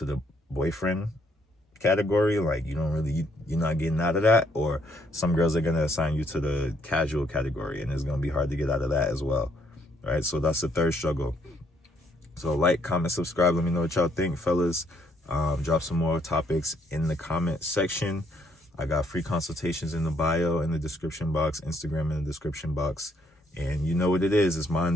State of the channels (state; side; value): normal; both; correlation 0.69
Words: the boyfriend category, like you're not getting out of that. Or some girls are gonna assign you to the casual category, and it's gonna be hard to get out of that as well, right? So that's the third struggle. So like, comment, subscribe. Let me know what y'all think, fellas. Drop some more topics in the comment section. I got free consultations in the bio, in the description box, Instagram in the description box. And you know what it is. It's